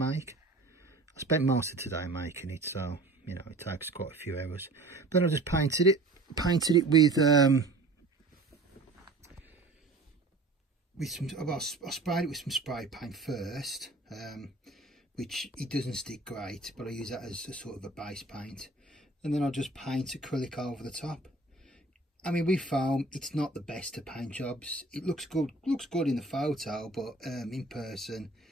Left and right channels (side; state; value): left; quieter; 3.1 dB